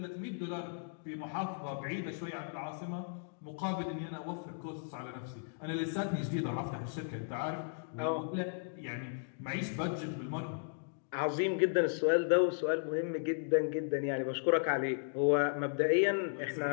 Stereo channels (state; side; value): silent; right; digital silence